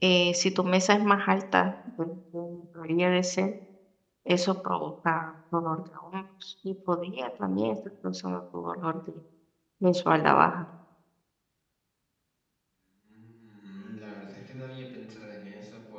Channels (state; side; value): identical; both; correlation 1.00